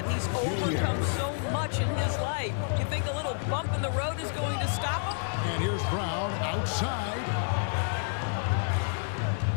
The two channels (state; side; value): silent; right; digital silence